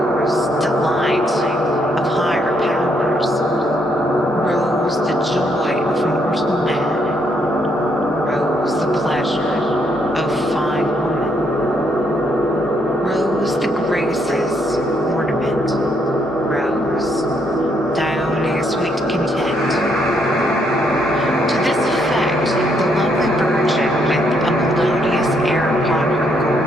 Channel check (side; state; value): both; normal; correlation 0.73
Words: delight of higher powers, rose, the joy of mortal man, rose, the pleasure of fine woman, rose, the graces, ornament, rose, Dione's sweet content. To this effect, the lovely virgin, with a melodious air upon her